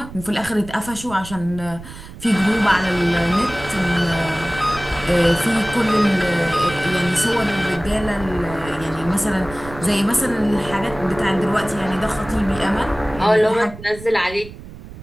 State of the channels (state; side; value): noise; right; rumble, 15 dB below the sound